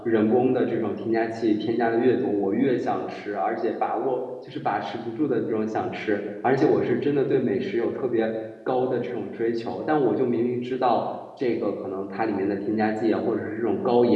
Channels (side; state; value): both; identical; correlation 1.00